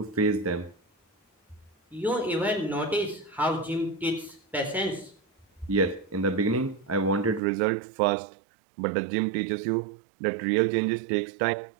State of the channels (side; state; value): left; drops out; at 7.4 s